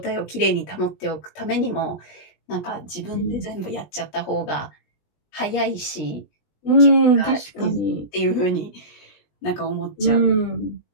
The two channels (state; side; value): late; right; 20 ms